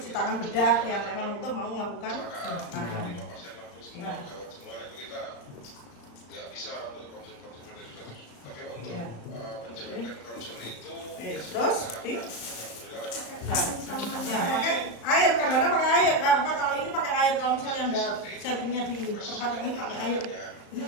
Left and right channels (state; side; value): late; right; 35 ms